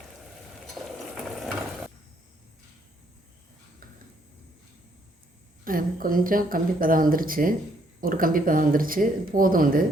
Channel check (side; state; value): both; normal; correlation 0.69